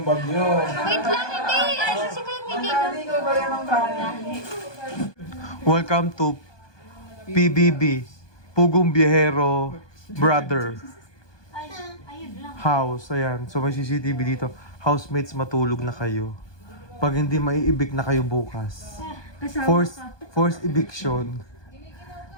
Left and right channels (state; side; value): late; right; 1.2 ms